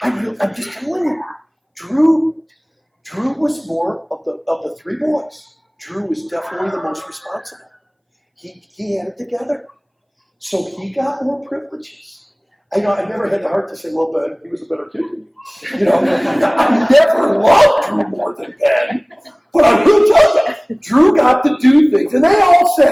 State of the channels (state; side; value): identical; both; correlation 1.00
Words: I'm just telling you. Drew was more of the 3 boys. Drew was definitely the most responsible. He had it together. So he got more privileges. I never had the heart to say, well, Ben, he was a better kid than you. I never loved Drew more than Ben. But I will tell you, Drew got to do things. And they all